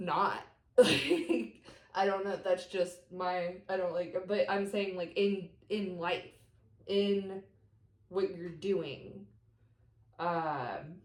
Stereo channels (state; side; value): identical; both; correlation 1.00